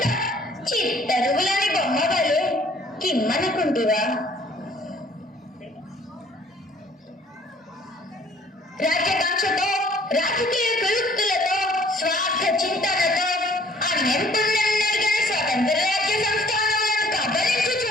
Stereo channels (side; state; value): both; normal; correlation 0.57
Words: చిత్తరువులని బొమ్మవలు కిమ్మనుకుంటివా? రాజ్యకాంక్షతో రాజకీయ ప్రయుక్తులతో స్వార్థ చింతనతో అన్యంతున్నెరుగని స్వతంత్ర రాజ్య సంస్థానాలను